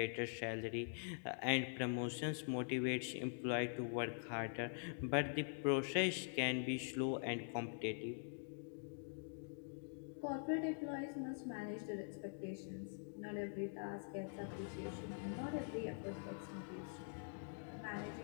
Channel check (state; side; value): silent; right; digital silence